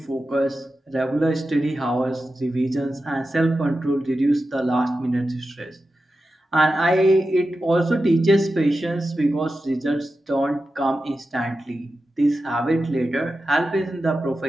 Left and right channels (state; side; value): normal; both; correlation 0.92